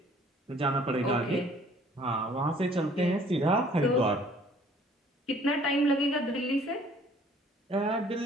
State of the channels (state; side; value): normal; both; correlation 0.56